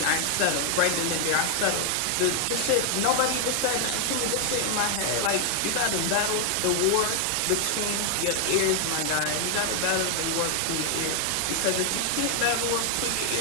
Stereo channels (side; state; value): both; different; correlation 0.00